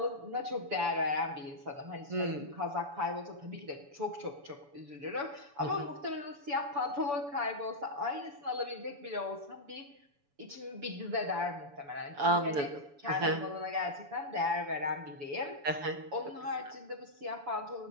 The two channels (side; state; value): left; late; 7.0 ms